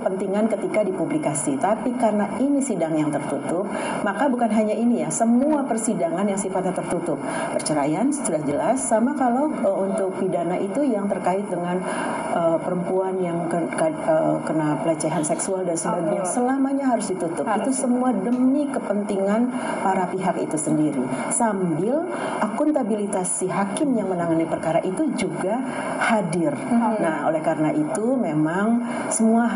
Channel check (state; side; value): identical; both; correlation 1.00